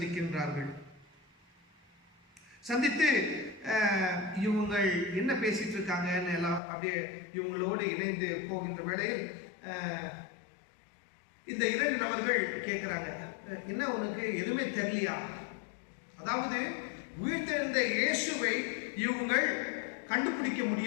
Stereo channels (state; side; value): drops out; right; at 6.6 s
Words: சந்தித்து இவங்கள் என்ன பேசிட்டு இருக்காங்கன்னு எல்லாம் அப்படியே இவங்களோடு இணைந்து போகின்ற வேளையில் இந்த 2 நபர்கள் கேட்குறாங்க, என்ன உனக்கு எதுவுமே தெரியலையா? அதாவது உயிர்த்தெழுந்த இயேசுவை இவங்கள் கண்டுபிடிக்க